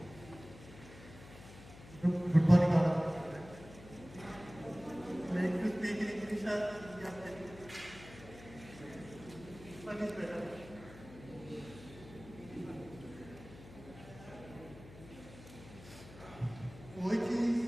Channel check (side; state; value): left; noise; hum, 17 dB below the sound